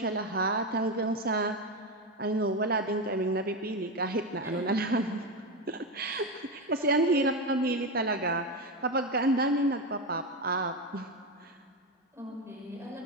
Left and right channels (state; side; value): normal; both; correlation 0.14